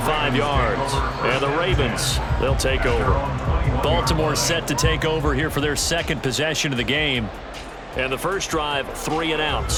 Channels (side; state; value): both; identical; correlation 1.00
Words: yards. And the Ravens, they'll take over. Baltimore set to take over here for their 2nd possession of the game. And the first drive, 3 and out.